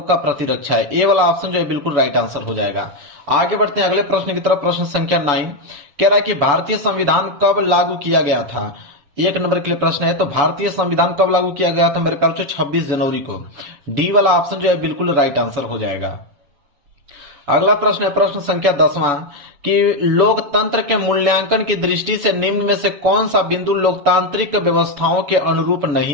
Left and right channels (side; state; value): left; late; 6.9 ms